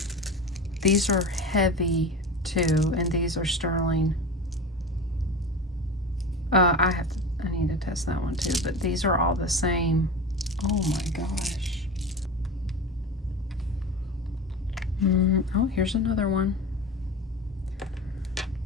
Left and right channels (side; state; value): both; normal; correlation 0.29